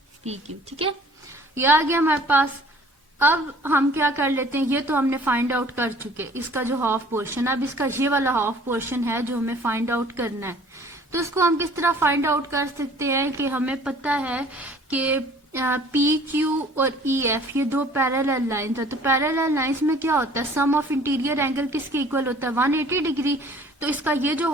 P Q, ठीक है। ये आ गया हमारे पास। अब हम क्या कर लेते हैं, ये तो हमने फाइंड आउट कर चुके इसका जो हाफ पोर्शन, अब इसका ये वाला हाफ पोर्शन है जो हमें फाइंड आउट करना है। तो इसको हम किस तरह फाइंड आउट कर सकते हैं कि हमें पता है कि पी क्यू और ई एफ ये दो पैरेलल लाइंस है, तो पैरेलल लाइंस में क्या होता है, सम ऑफ इंटीरियर एंगल किसके इक्वल होता है 180 डिग्री। तो इसका ये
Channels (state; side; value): normal; both; correlation 0.52